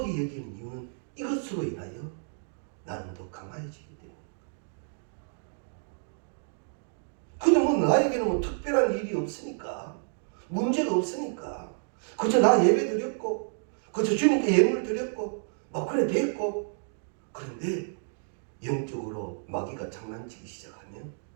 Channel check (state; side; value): silent; left; digital silence